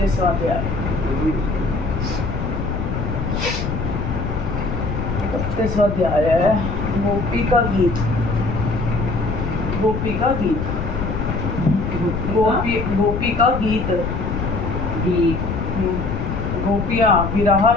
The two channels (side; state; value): left; noise; rumble, 3 dB below the sound